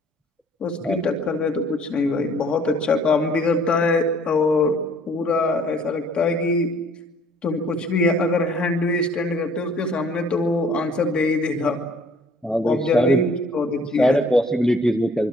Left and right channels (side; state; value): both; normal; correlation 0.57